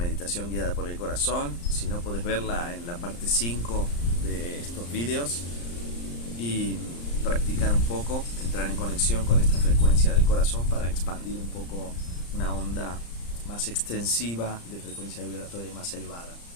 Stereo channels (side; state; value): right; late; 35 ms